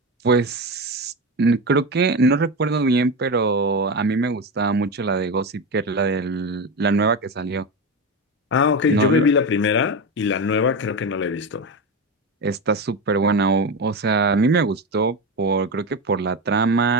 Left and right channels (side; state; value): both; normal; correlation 0.18